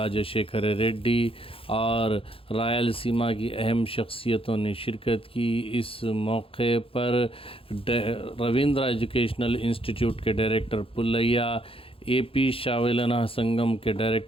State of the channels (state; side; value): late; right; 0.27 ms